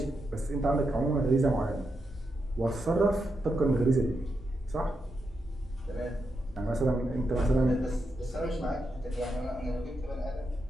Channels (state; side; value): normal; both; correlation 0.84